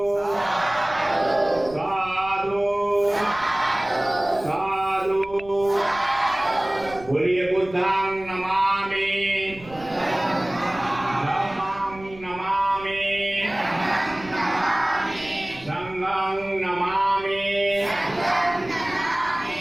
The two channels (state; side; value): noise; right; rumble, 19 dB below the sound